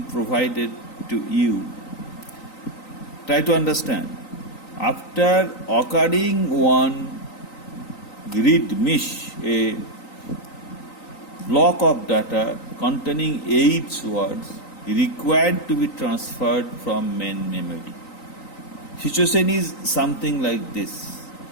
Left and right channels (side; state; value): right; late; 3.9 ms